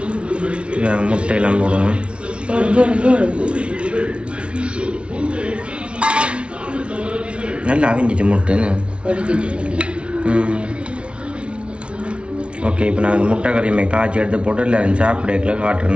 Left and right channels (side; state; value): left; late; 0.059 ms